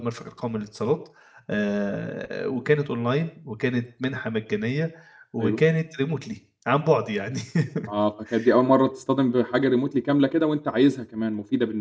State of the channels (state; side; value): identical; both; correlation 1.00